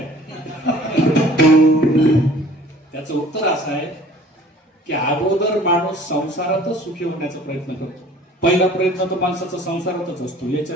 त्याचं उत्तर असं आहे की अगोदर माणूस संसारातच सुखी होण्याचा प्रयत्न करतो. पहिला प्रयत्न तर माणसाचा संसारातच असतो,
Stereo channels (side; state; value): both; normal; correlation 0.50